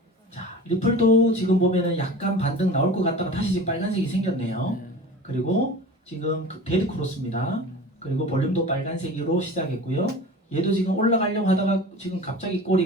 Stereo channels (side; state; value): both; normal; correlation 0.36